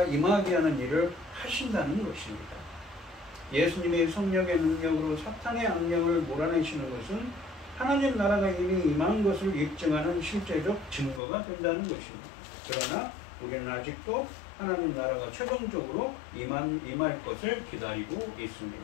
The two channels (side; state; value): right; drops out; at 11.2 s